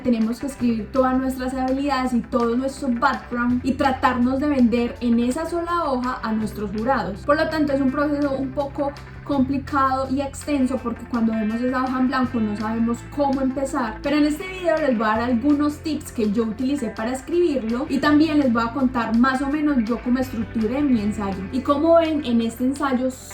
que escribir todas nuestras habilidades y todo nuestro background y tratarnos de vender en esa sola hoja a nuestros jurados. Por lo tanto, es un proceso un poco complicado y extenso porque cuando vemos esa hoja en blanco no sabemos cómo empezar, pero en este video les voy a dar algunos tips que yo utilicé para escribirlo y también les voy a contar más o menos yo cómo estructuré mi ensayo. Y como ven, en este ensayo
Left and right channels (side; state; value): both; identical; correlation 1.00